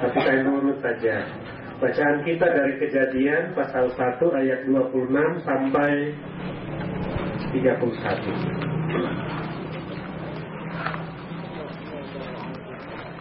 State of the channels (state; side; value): identical; both; correlation 1.00